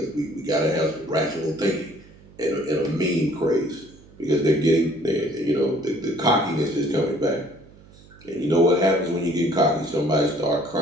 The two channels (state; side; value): noise; right; hum, 24 dB below the sound